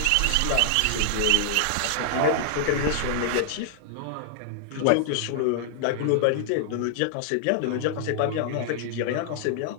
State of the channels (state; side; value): different; both; correlation -0.01